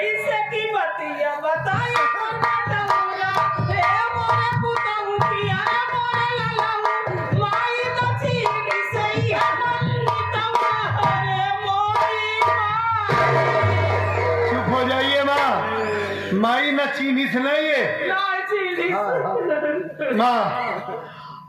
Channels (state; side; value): identical; both; correlation 1.00